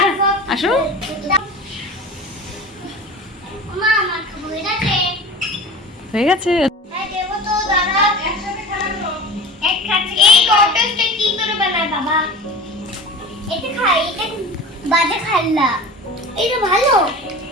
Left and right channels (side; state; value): both; normal; correlation 0.35